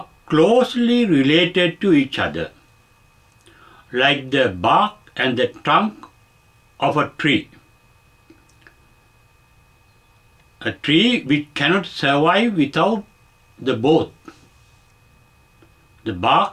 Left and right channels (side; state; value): both; identical; correlation 1.00